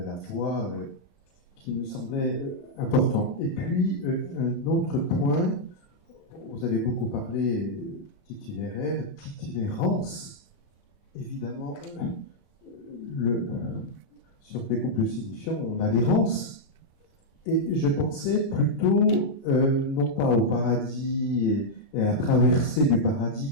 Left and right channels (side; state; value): right; late; 33 ms